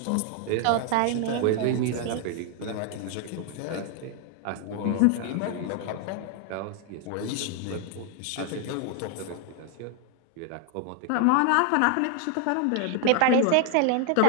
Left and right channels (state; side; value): different; both; correlation 0.00